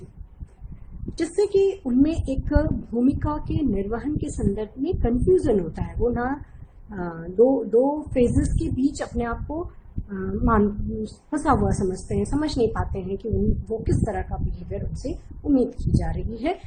जिससे कि उनमें एक भूमिका के निर्वहन के संदर्भ में कंफ्यूजन होता है। वो ना दो फेजेस के बीच अपने आप को फंसा हुआ समझते हैं, समझ नहीं पाते हैं कि वो किस तरह का बिहेवियर उनसे उम्मीद की जा रही है,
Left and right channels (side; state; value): both; identical; correlation 1.00